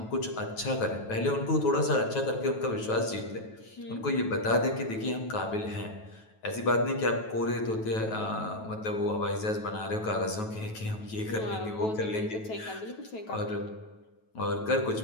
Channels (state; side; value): late; right; 9.2 ms